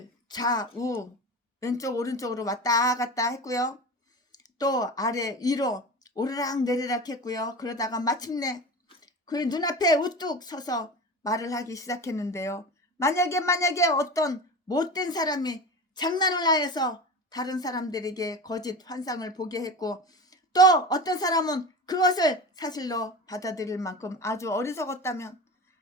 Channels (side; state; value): both; normal; correlation 0.30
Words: 좌우 왼쪽 오른쪽으로 왔다 갔다 했고요, 또 아래 위로 오르락 내리락 했고요. 그러다가 마침내 그의 눈앞에 우뚝 서서 말을 하기 시작했는데요. 만약에 어떤 못된 사람이 장난을 하여서 다른 사람들에게 거짓 환상을 보게 했고, 또 어떤 사람은 그것을 사실로 받아들일 만큼 아주 어리석었다면